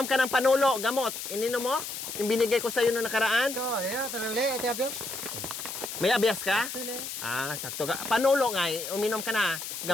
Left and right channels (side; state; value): left; noise; hiss, 7 dB below the sound